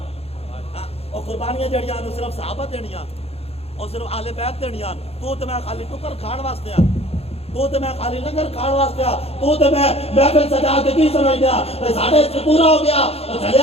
اور قربانیاں جڑیاں صرف صحابہ دینیاں اور صرف اہل بیت دینیاں تو تے میں خالی ٹکر کھان واسطے ہاں تو تے میں خالی لنگر کھان واسطے ہاں تو تے میں محفل سجا کے کی سمجھ دیا ساڈے اس پورا ہو گیا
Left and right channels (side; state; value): right; late; 0.29 ms